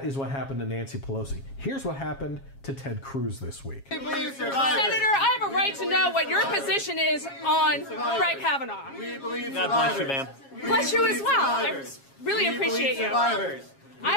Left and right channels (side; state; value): right; late; 7.3 ms